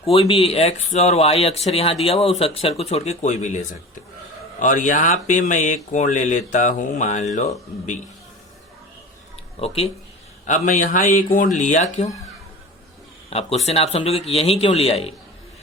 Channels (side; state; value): both; normal; correlation 0.35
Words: कोई भी x और y अक्षर यहाँ दिया हुआ उस अक्षर को छोड़ के कोई भी ले सकते। और यहाँ पे मैं एक कोण ले लेता हूँ, मान लो B। ओके, अब मैं यहाँ एक कोण लिया क्यों, आप क्वेश्चन आप समझोगे कि यही क्यों लिया ये।